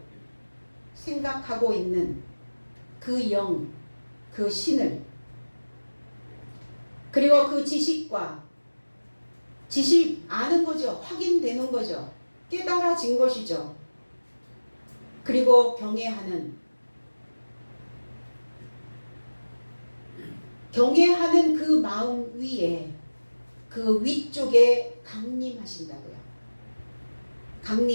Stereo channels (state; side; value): inverted; both; correlation -1.00